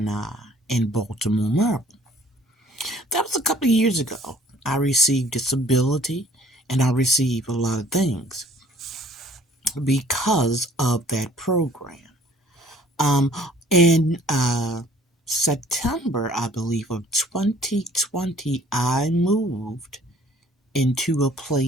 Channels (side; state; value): both; normal; correlation 0.55